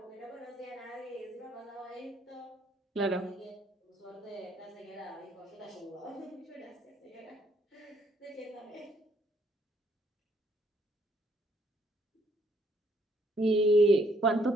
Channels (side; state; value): both; normal; correlation 0.68